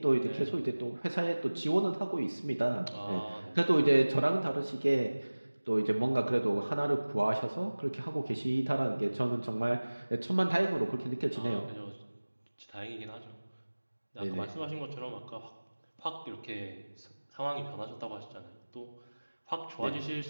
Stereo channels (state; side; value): inverted; both; correlation -1.00